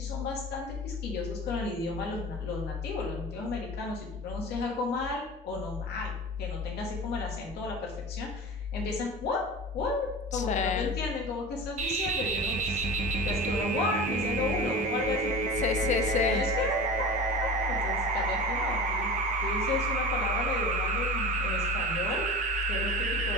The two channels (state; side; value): normal; both; correlation 0.33